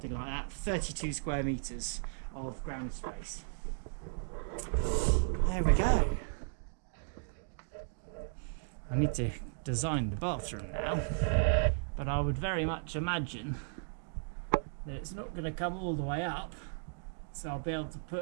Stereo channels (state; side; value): silent; left; digital silence